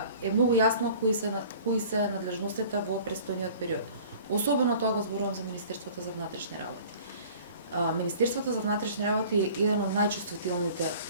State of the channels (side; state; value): both; inverted; correlation -0.47